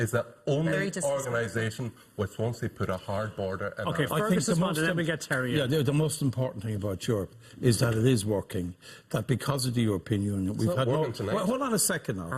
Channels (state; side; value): identical; both; correlation 1.00